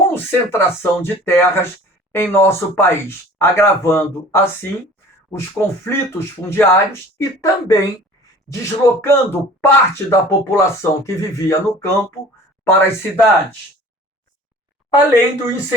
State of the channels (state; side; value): normal; both; correlation 0.46